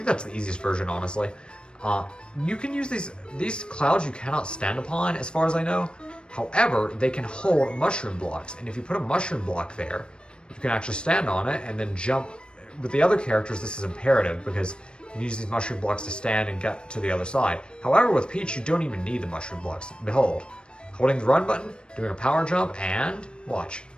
that's the easiest version, honestly. You can use these clouds you cannot stand upon, as far as I know. However, they can hold mushroom blocks, and if you put a mushroom block there, you can actually stand on it and then jump. With the other characters, this is imperative because you can use these mushroom blocks to stand and get to the other side. However, with Peach, you don't even need the mushroom blocks. Behold, holding the run button, doing a power jump, and watch.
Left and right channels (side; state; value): right; late; 0.054 ms